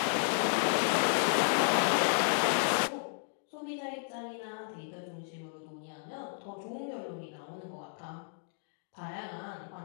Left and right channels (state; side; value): silent; right; digital silence